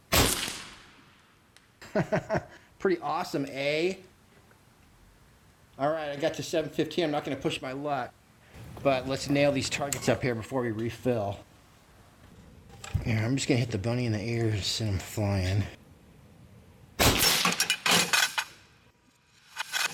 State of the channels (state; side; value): identical; both; correlation 1.00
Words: Pretty awesome, eh? Alright, I got to 715. I'm not going to push my luck. But let's nail these targets up here before we refill. Here, I'm just going to hit the bunny in the ears and send him flying.